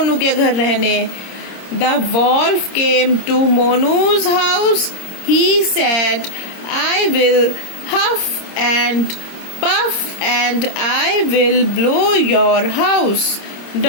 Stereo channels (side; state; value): right; late; 26 ms